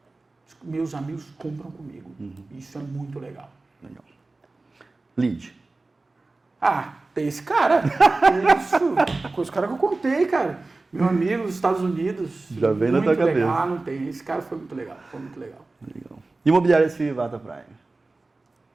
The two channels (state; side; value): quieter; left; 3.3 dB